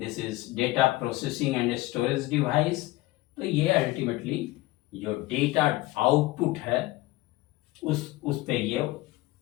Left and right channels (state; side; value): quieter; right; 18.8 dB